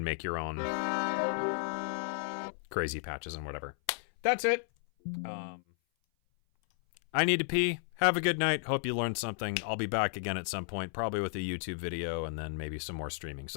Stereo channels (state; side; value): silent; right; 56 dB below the other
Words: make your own crazy patches and whatever. That's it. I need to pee. Have a good night. Hope you learned something. I'll be back again at some point, probably with a YouTube video and then maybe some more streaming.